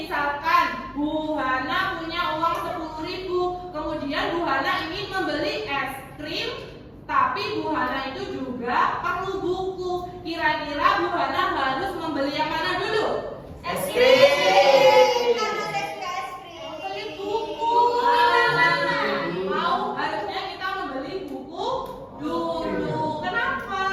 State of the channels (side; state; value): both; identical; correlation 1.00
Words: Bu Hana punya uang 10.000, kemudian Bu Hana ingin membeli es krim, tapi Bu Hana itu juga perlu buku. Kira-kira Bu Hana harus membeli yang mana dulu? Es krim. Membeli buku. Mau harusnya kita membeli buku dulu. Kenapa?